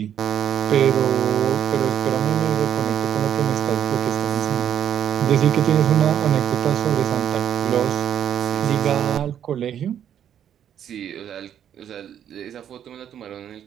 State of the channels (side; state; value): left; quieter; 9.6 dB